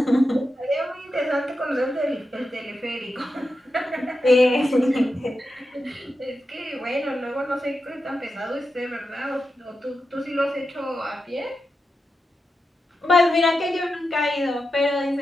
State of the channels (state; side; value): normal; both; correlation 0.89